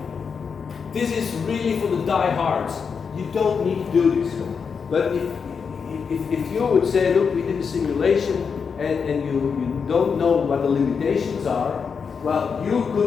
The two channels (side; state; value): right; quieter; 6.0 dB